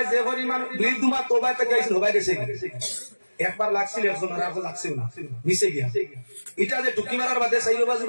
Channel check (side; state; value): both; inverted; correlation -1.00